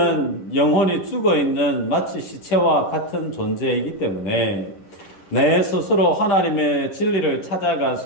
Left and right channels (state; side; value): late; right; 11 ms